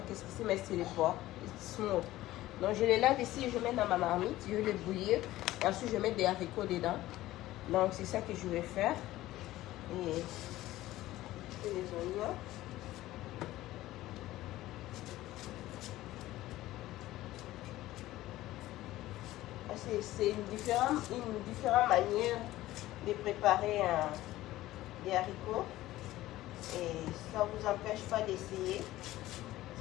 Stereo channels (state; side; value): quieter; right; 16.0 dB